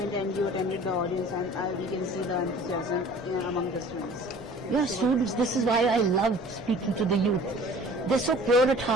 And you attended the audience, and we can see the enthusiasm among the students. Yeah, students, this is why I love speaking to the youth. They're so pure at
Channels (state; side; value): normal; both; correlation 0.47